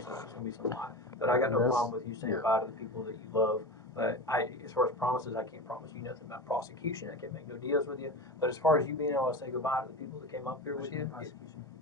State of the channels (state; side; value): normal; both; correlation 0.27